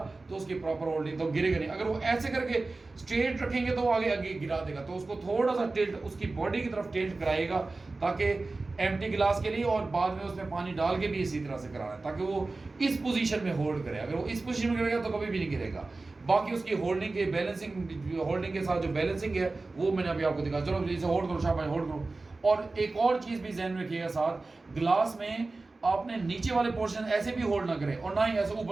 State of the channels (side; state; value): left; quieter; 3.4 dB